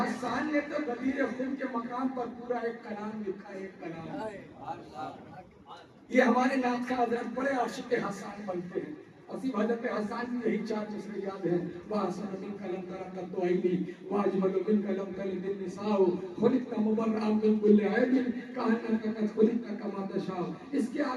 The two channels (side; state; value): both; identical; correlation 1.00